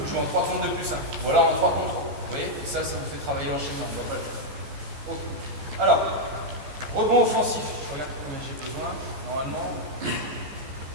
jouez en 3 contre 2 plus 1, ou alors en 3 contre 3. Vous voyez? Et ça vous fait travailler l'enchaînement, on ne va pas le faire. Ok. Alors, rebond offensif. Je regarde combien j'ai besoin, normalement.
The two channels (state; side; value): late; left; 15 ms